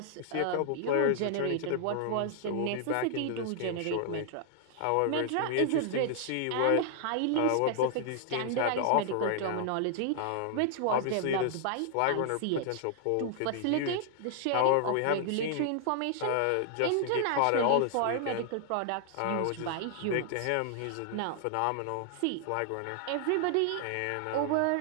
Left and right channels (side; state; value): both; different; correlation 0.00